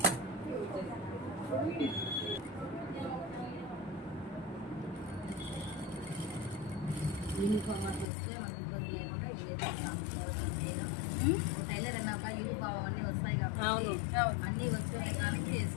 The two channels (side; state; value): right; drops out; at 8.1 s